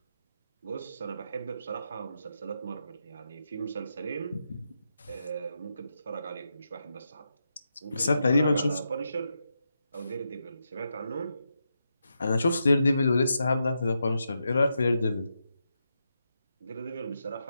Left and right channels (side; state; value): both; inverted; correlation -0.85